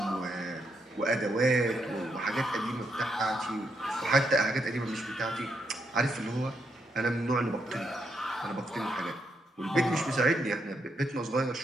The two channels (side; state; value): both; normal; correlation 0.79